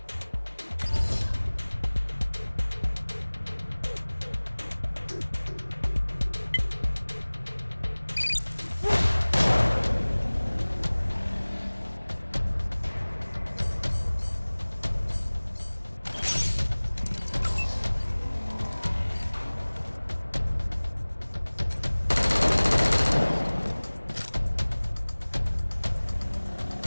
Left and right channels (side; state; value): both; inverted; correlation -1.00